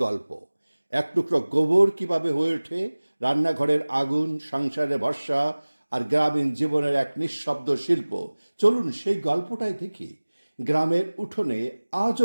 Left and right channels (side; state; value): both; inverted; correlation -1.00